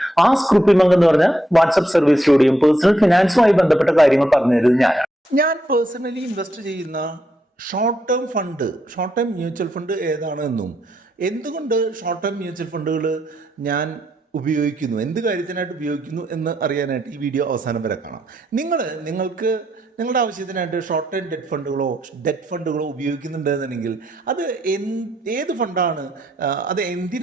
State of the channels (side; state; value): both; normal; correlation 0.79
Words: ആസ്ക് റുപ്പിമംഗ് എന്ന് പറഞ്ഞ വാട്സ്ആപ്പ് സർവീസിലൂടെയും പേഴ്സണൽ ഫിനാൻസുമായി ബന്ധപ്പെട്ട കാര്യങ്ങൾ പറഞ്ഞു തരുന്നത് ഞാനാണ്. ഞാൻ പേഴ്സണലി ഇൻവെസ്റ്റ് ചെയ്യുന്ന ഷോർട്ട് ടേം മ്യൂച്വൽ ഫണ്ട് ഏതാണെന്നും എന്തുകൊണ്ട് ഷോർട്ട് ടേം മ്യൂച്വൽ ഫണ്ടുകൾ ഞാൻ ഉപയോഗിക്കുന്നു, എന്ത് കാര്യത്തിനായിട്ട് ഉപയോഗിക്കുന്നു എന്ന് അറിയാനായിട്ട് ഈ വീഡിയോ അവസാനം വരെ കാണാം. നിങ്ങൾക്ക് നിങ്ങളുടെ ആവശ്യത്തിനായിട്ട് ഷോർട്ട് ടൈം ഡെറ്റ് ഫണ്ടുകളോ ഉപയോഗിക്കുന്നുണ്ടെന്നുണ്ടെങ്കിൽ അത് ഏത് ഫണ്ടാണ്, അത്